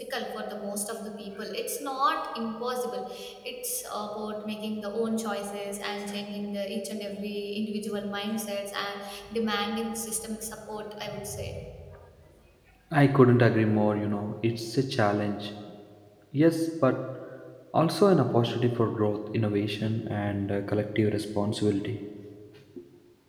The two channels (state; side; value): identical; both; correlation 1.00